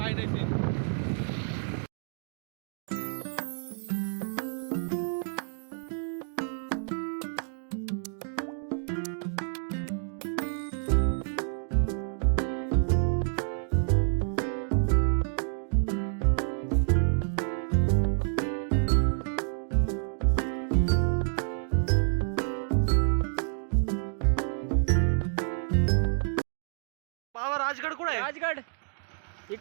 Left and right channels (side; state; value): left; silent; 58 dB below the other